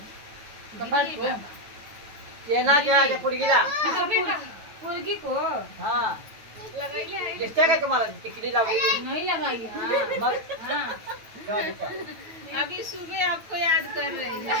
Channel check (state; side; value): late; left; 9.1 ms